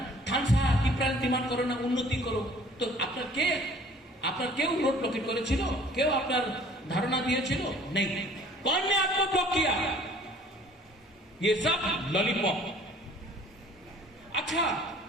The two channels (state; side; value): normal; both; correlation 0.53